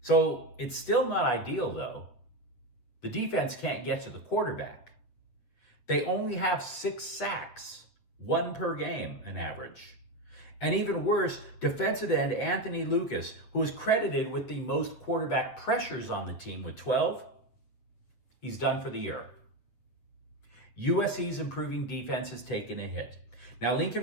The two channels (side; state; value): right; late; 8.4 ms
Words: So it's still not ideal, though. The defense can't get to the quarterback. They only have 6 sacks, 1 per game, an average. And even worse, defensive end Anthony Lucas, who is credited with the most quarterback pressures on the team with 12, he's done for the year. USC's improving defense has taken a hit. Now,